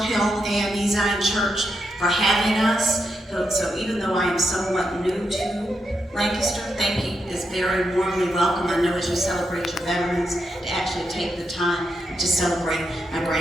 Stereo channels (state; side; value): normal; both; correlation 0.83